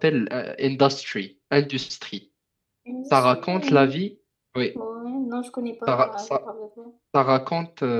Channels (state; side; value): identical; both; correlation 1.00